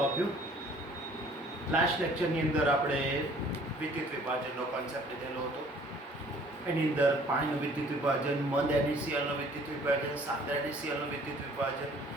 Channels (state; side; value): normal; both; correlation 0.55